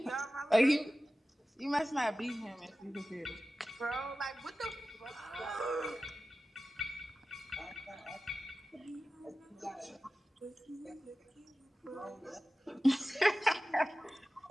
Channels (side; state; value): both; normal; correlation 0.95